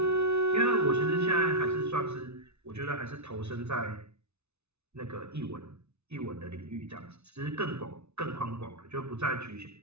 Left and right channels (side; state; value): left; late; 0.81 ms